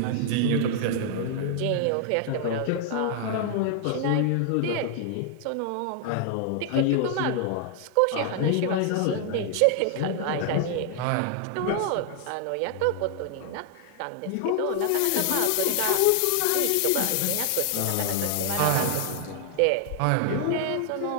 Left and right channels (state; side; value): different; both; correlation 0.00